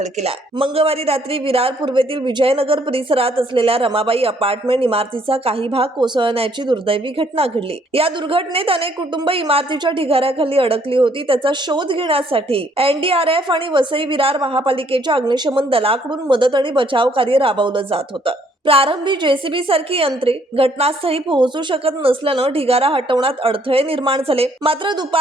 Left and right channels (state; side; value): normal; both; correlation 0.66